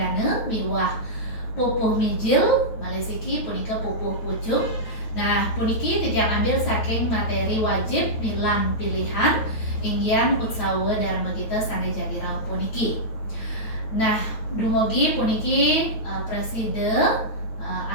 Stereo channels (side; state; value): right; late; 9.2 ms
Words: miwah pupuh mijil, malesiki punika pupuh pucuk. Nah, puniki titian ambil saking materi wajib milan pilihan inggian utsawa dharma kita sane jadi rauh puniki. Nah, dumugi puniki preside